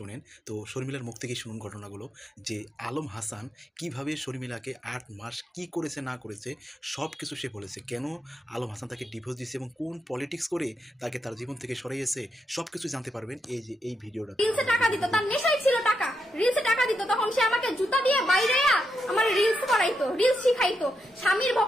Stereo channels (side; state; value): both; normal; correlation 0.83